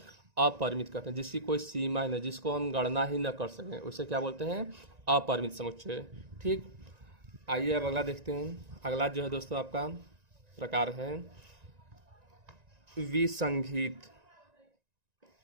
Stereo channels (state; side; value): late; left; 1.9 ms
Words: अपरिमित कहते हैं, जिसकी कोई सीमा ही नहीं, जिसको हम गणना ही न कर सकें, उसे क्या बोलते हैं, अपरिमित समुच्चय। ठीक, आइए अब अगला देखते हैं। अगला जो है दोस्तों आपका प्रकार है विसंगीत।